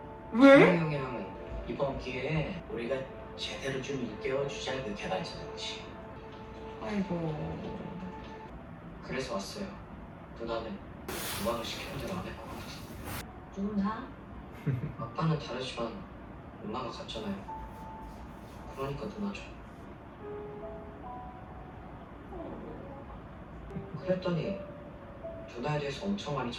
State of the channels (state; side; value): identical; both; correlation 1.00